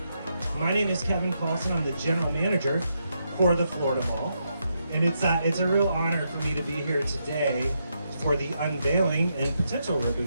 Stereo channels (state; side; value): inverted; both; correlation -0.81